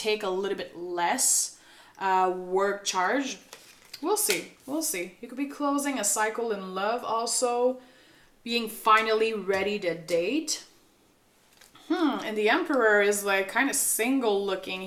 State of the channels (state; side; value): identical; both; correlation 1.00